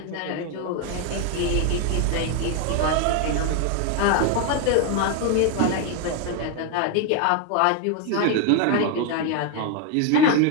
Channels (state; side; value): different; both; correlation 0.01